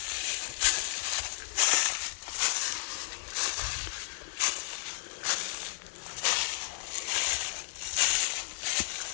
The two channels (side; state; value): right; silent; 56 dB below the other